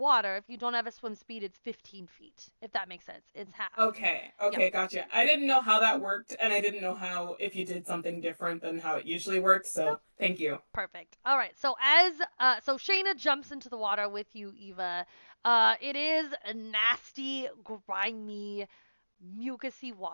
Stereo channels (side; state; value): both; inverted; correlation -1.00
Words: if you don't have a swim speed, it's 15 feet, if that makes sense. It's half. Okay, gotcha. I didn't know how that worked, and I didn't know how if you did something different than how it usually works. So Nope. thank you. Perfect. All right. So so Shayna jumps into the water with you, Eva. It is a nasty, grimy, mucusy